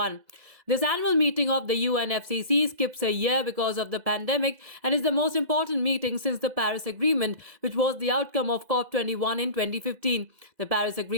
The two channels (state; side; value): late; left; 2.0 ms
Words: This annual meeting of the UNFCCC skips a year because of the pandemic and is the most important meeting since the Paris Agreement, which was the outcome of COP21 in 2015. The Paris